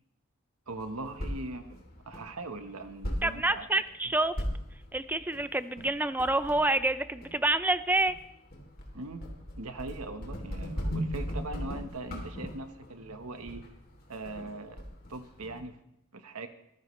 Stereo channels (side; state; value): both; normal; correlation 0.51